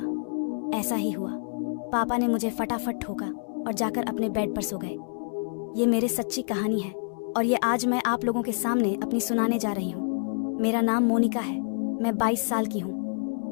ऐसा ही हुआ। पापा ने मुझे फटाफट ठोका और जाकर अपने बेड पर सो गए। ये मेरी सच्ची कहानी है और ये आज मैं आप लोगों के सामने अपनी सुनाने जा रही हूँ। मेरा नाम मोनिका है। मैं 22 साल की हूँ।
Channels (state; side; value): silent; right; digital silence